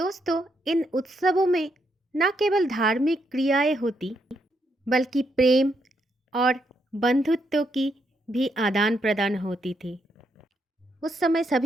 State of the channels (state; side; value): normal; both; correlation 0.78